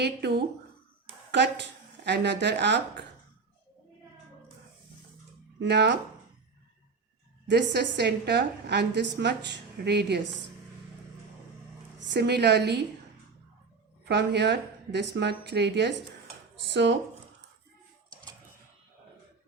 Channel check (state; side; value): quieter; left; 4.6 dB